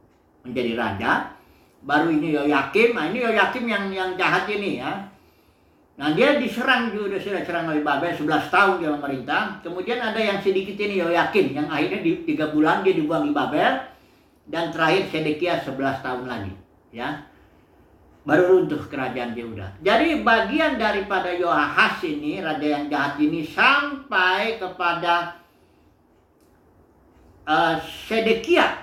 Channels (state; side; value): identical; both; correlation 1.00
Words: menjadi raja. Baru ini Yoyakim. Nah ini Yoyakim yang jahat ini ya. Nah dia diserang juga, sudah diserang oleh Babel, 11 tahun dia memerintah. Kemudian ada yang sedikit ini Yoyakim, yang akhirnya di 3 bulan dia dibuang di Babel. Dan terakhir Sedekia 11 tahun lagi ya, baru runtuh kerajaan Yehuda. Jadi bagian daripada Yoahas ini, raja yang jahat ini, sampai kepada